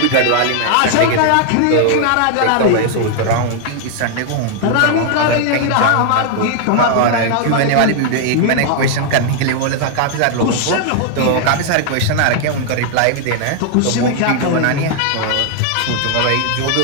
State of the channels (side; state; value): both; different; correlation 0.00